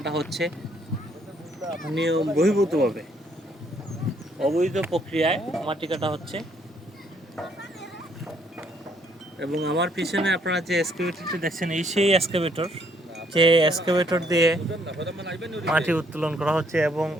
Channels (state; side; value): normal; both; correlation 0.68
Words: হচ্ছে নিয়ম বহির্ভূতভাবে, অবৈধ প্রক্রিয়ায় মাটি কাটা হচ্ছে। এবং আমার পিছনে আপনারা যে এক্সকাভেটরটি দেখছেন, এই সেই এক্সকাভেটর, যে এক্সকাভেটর দিয়ে মাটি উত্তোলন করা হচ্ছে এবং